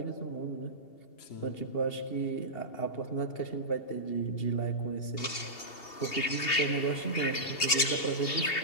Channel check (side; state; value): right; late; 2.7 ms